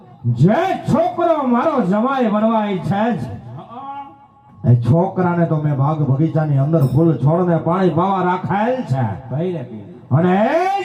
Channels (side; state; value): both; identical; correlation 1.00